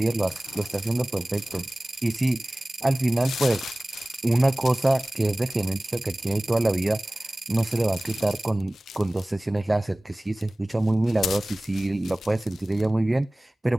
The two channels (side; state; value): both; normal; correlation 0.98